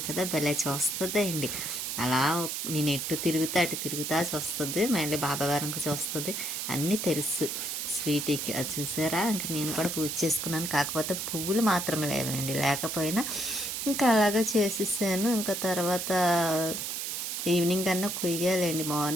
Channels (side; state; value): right; noise; hiss, 3 dB below the sound